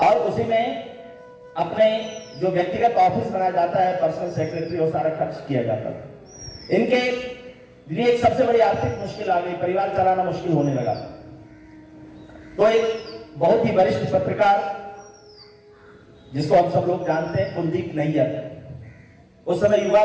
उसी में अपने जो व्यक्तिगत ऑफिस बनाया जाता है, पर्सनल सेक्रेटरी, वो सारा खर्च किया जाता था। इनके लिए एक सबसे बड़ी आर्थिक मुश्किल आ गई, परिवार चलाना मुश्किल होने लगा। तो एक बहुत ही वरिष्ठ पत्रकार जिसको हम सब लोग जानते हैं, कुलदीप नैयर, उस समय युवा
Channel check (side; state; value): both; identical; correlation 1.00